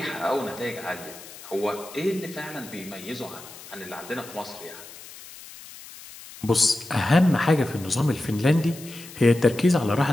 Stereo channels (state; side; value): noise; left; hiss, 17 dB below the sound